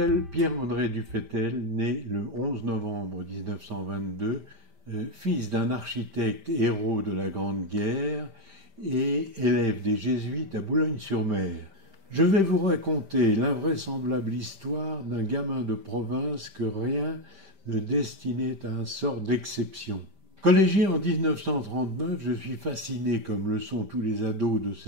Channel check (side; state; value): left; late; 5.1 ms